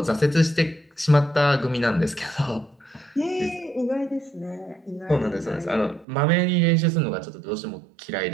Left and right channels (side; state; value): left; drops out; at 6.1 s